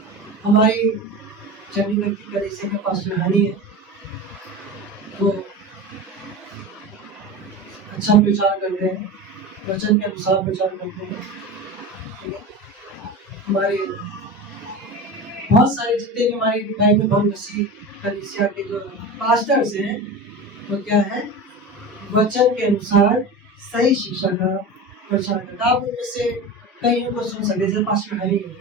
हमारी चंडीगढ़ की कलीसिया में पास्टर हनी है, वो अच्छा प्रचार करते हैं, वचन के अनुसार प्रचार करते हैं। ठीक है, हमारे बहुत सारे जितने भी हमारे बाइबल बहुत मसीह कलीसिया के जो पास्टर्स हैं वो क्या है? वचन के अनुसार सही शिक्षा का प्रचार करता है। आप उनमें से कईयों को सुन सकते, जैसे पास्टर हरी है।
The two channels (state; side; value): normal; both; correlation 0.29